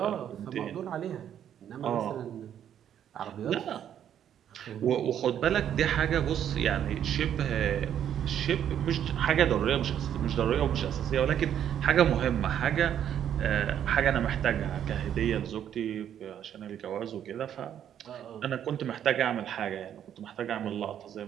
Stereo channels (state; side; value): quieter; left; 9.8 dB